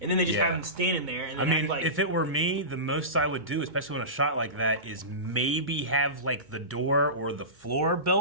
and then they just have him standing there. And I then mean, act like, if it were me, the most I would do, especially on a shot like that, is maybe have like the door or the floor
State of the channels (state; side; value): late; left; 2.2 ms